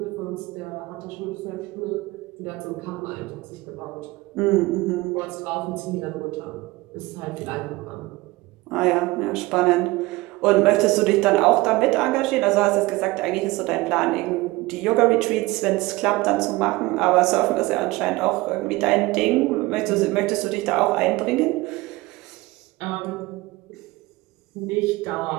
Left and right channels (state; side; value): quieter; left; 20.8 dB